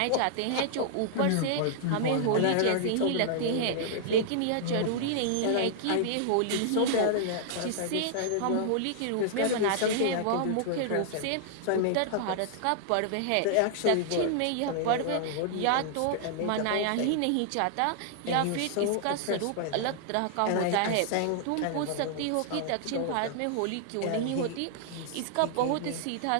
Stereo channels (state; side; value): different; both; correlation -0.01